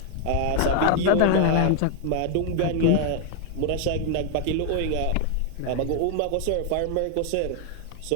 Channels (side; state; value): both; different; correlation 0.00